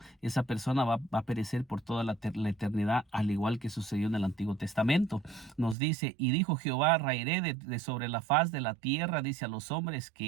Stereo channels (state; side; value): drops out; left; at 5.8 s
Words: esa persona va a perecer por toda la eternidad, al igual que sucedió en el Antiguo Testamento. Nos dice: y dijo Jehová, raeré de sobre la faz de la tierra, dice, a los hombres